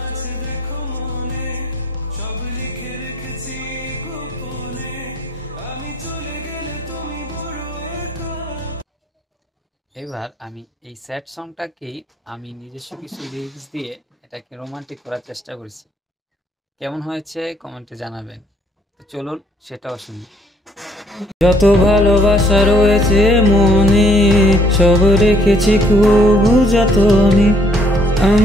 আছে দেখো মনে, সব লিখে রেখেছি গোপনে, আমি চলে গেলে তুমি বড় একা। এবার আমি এই স্যাড সংটাকেই আমি নিজস্ব কিছু লিরিক্স দিয়ে এটাকে রোমান্টিক করার চেষ্টা করেছি। কেমন হয়েছে কমেন্টে জানাবেন। তো চলুন সেটাও শুনি। যত ভালোবাসা রয়েছে মনে, সব রেখেছি খুব যতনে।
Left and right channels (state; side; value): normal; both; correlation 0.64